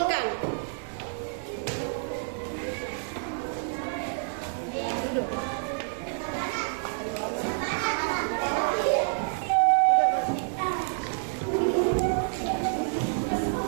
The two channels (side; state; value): left; silent; 59 dB below the other